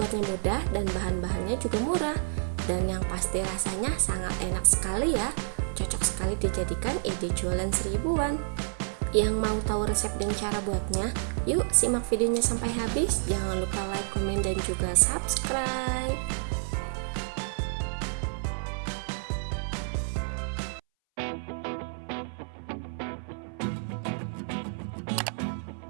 mudah dan bahan-bahannya juga murah, dan yang pasti rasanya sangat enak sekali ya. Cocok sekali dijadikan ide jualan seribuan. Yang mau tahu resep dan cara buatnya, yuk simak videonya sampai habis. Jangan lupa like, komen, dan juga subscribe.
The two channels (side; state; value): left; silent; 58 dB below the other